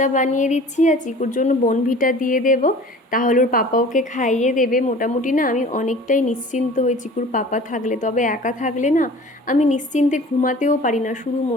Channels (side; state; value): both; normal; correlation 0.44